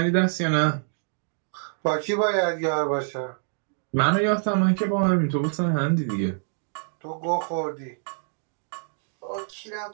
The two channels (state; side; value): silent; left; digital silence